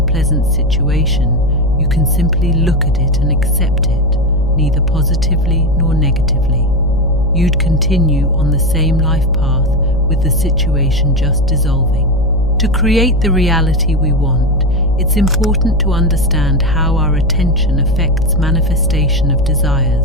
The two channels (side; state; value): left; noise; hum, 9 dB below the sound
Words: situation, you can simply look at it and accept it, neither positively nor negatively. You'd continue on the same life path with the situation just dissolving. To create the reality we want, it's important to understand how our attention affects manifestation of